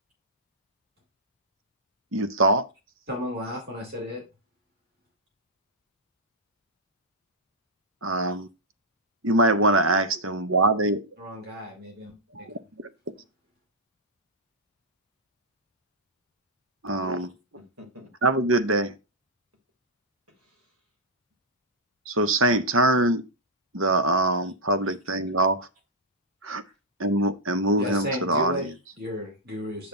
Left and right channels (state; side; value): normal; both; correlation -0.08